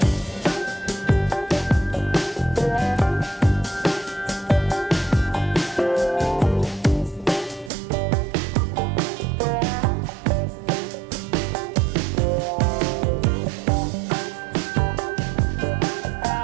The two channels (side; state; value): left; drops out; at 7.7 s